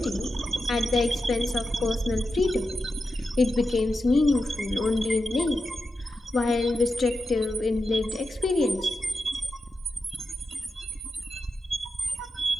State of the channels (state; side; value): normal; both; correlation 0.89